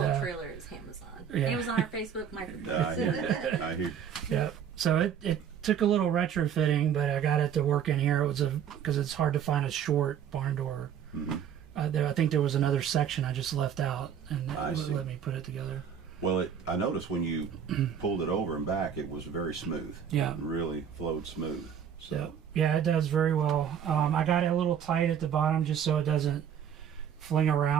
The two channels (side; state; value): left; quieter; 8.4 dB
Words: whole trailer is Amazon. yeah. Amazon or Facebook microphone. I hear you. I hear. yeah. So it took a little retrofitting, but I got it to work in here. It was because it's hard to find a short barn door. Mm-hmm. I think there was another section I just left out, and I it see. wouldn't let me put it together. Well, I noticed when you pulled it over and back, it was very smooth. Yeah. It really flowed smooth. So. Yeah, it does very well. I got it a little tight at the bottom just so it doesn't fling